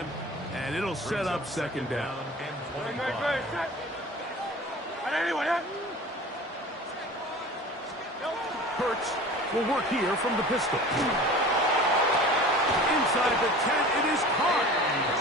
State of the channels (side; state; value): both; normal; correlation 0.40